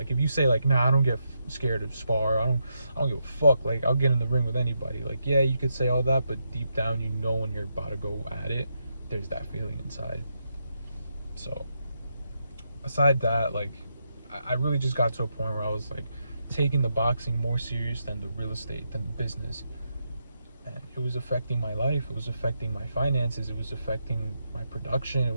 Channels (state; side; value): inverted; both; correlation -0.82